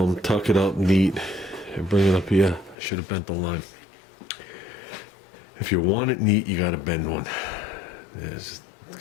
tuck it up neat, and bring it up here. I should have bent the line. If you want it neat, you gotta bend one. There's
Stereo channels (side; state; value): right; drops out; at 2.8 s